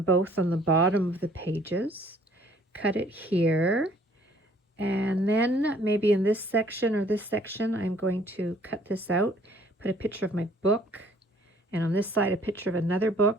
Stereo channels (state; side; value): normal; both; correlation 0.59